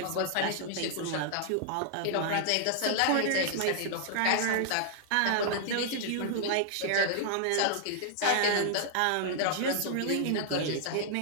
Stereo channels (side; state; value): both; different; correlation -0.01